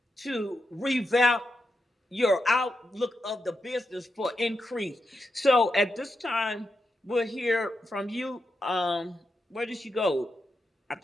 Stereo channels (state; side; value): normal; both; correlation 0.86